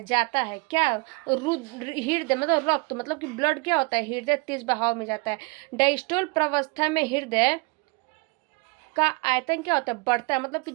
जाता है क्या, हृदय मतलब रक्त मतलब कि ब्लड क्या होता है, हृदय तेज बहाव में जाता है। डायस्टोल प्रावस्था में हृदय का आयतन क्या होता है, बढ़ता है, मतलब कि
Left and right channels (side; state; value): left; quieter; 28.6 dB